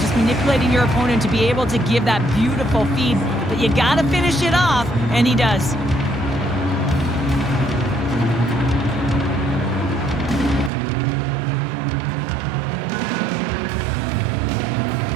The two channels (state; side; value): drops out; left; at 10.7 s